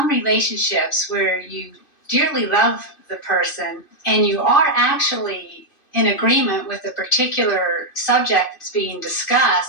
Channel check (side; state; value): right; late; 2.5 ms